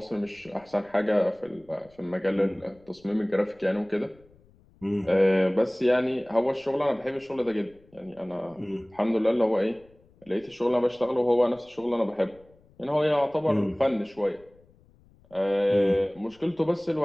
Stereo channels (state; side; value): noise; left; rumble, 29 dB below the sound